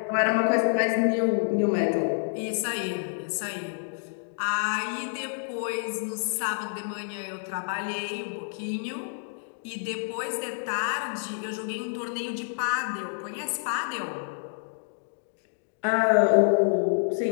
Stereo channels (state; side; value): silent; right; digital silence